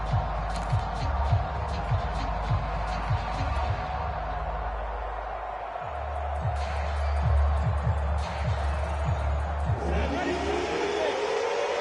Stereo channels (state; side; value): identical; both; correlation 1.00